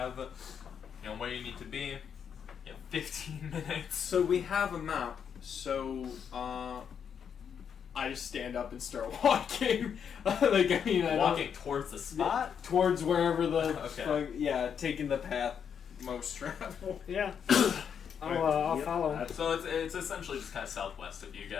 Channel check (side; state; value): right; quieter; 7.6 dB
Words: where you need to be. You have 15 minutes. So we have a map. So I just stand up and start walking. Walking towards the spot? Towards wherever the okay. Taking the path most travel. Yeah. I'll follow. So it's essentially just kind of southwest of you